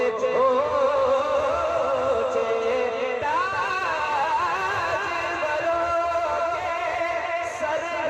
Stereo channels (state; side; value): identical; both; correlation 1.00